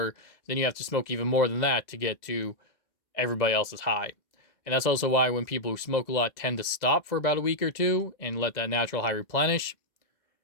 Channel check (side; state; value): right; late; 2.0 ms